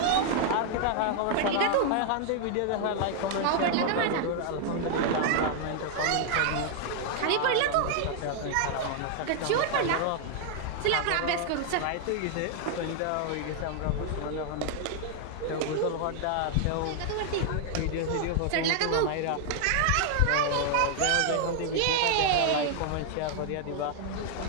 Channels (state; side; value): different; both; correlation 0.00